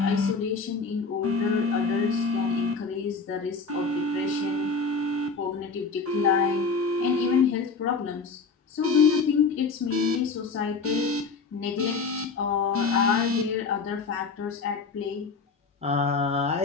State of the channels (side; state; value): right; quieter; 4.6 dB